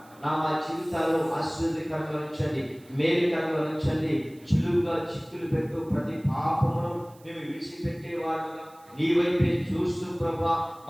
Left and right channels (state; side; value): noise; right; hiss, 28 dB below the sound